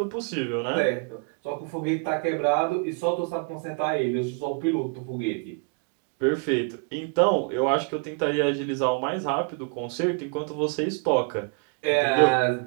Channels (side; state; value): left; quieter; 33.8 dB